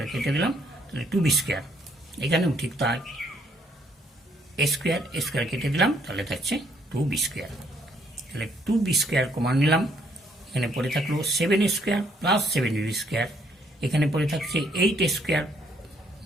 কেটে দিলাম, তাহলে 2b স্কোয়ার, এখানেও ঠিক তাই এ স্কোয়ার কেটে দিলাম, তাহলে থাকছে 2b স্কোয়ার। তাহলে 2b স্কোয়ার কমান নিলাম, এখানে পড়ে থাকলো 7 স্কোয়ার প্লাস 7b স্কোয়ার, এখানে পড়ে থাকছে 8 স্কোয়ার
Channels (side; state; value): both; normal; correlation 0.69